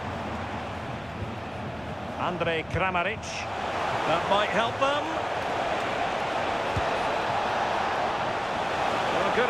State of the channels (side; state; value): left; noise; rumble, 24 dB below the sound